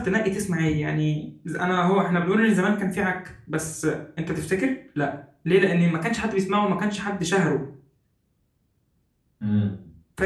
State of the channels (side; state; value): both; identical; correlation 1.00